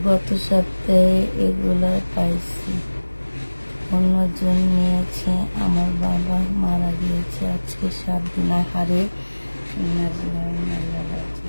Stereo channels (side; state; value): both; inverted; correlation -1.00